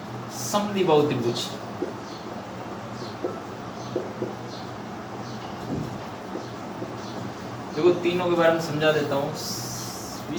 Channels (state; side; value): identical; both; correlation 1.00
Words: समद्विबाहु त्रिभुज। देखो तीनों के बारे में समझा देता हूँ।